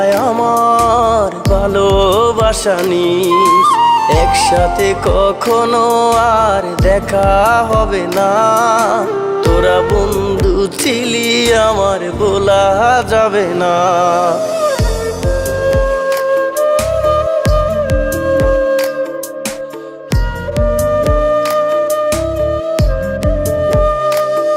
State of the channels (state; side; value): identical; both; correlation 1.00